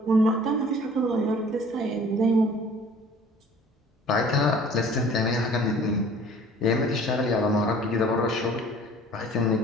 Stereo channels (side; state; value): both; normal; correlation 0.50